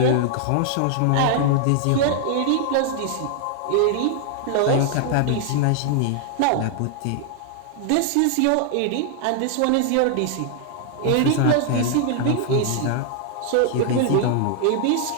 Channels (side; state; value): both; different; correlation 0.00